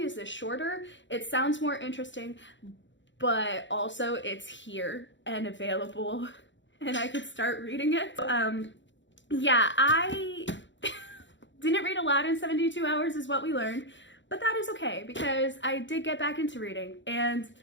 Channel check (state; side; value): late; right; 0.54 ms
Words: is this shorter, it sounds more interesting, but also it's here and available and I could start reading it. Yeah, I didn't read aloud in 72 hours is what we learned, but that is okay because I did get back into reading and